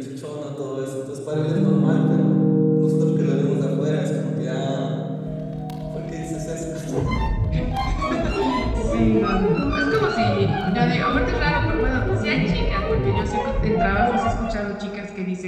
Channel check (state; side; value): identical; both; correlation 1.00